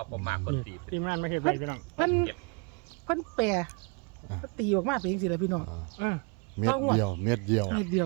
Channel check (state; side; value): quieter; left; 33.1 dB